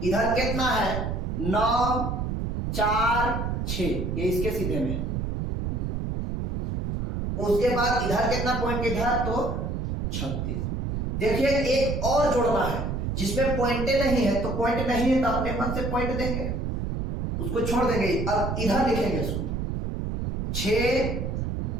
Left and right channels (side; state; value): right; noise; rumble, 2 dB below the sound